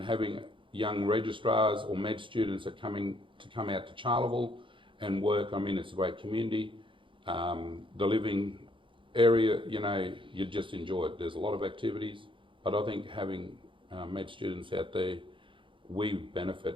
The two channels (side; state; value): left; late; 0.25 ms